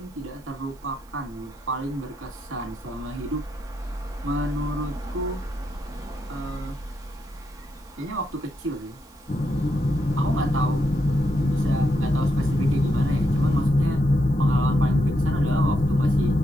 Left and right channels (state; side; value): noise; right; hiss, 30 dB below the sound